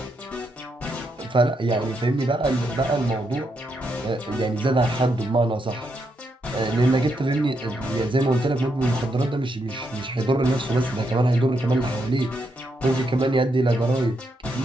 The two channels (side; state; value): both; normal; correlation 0.80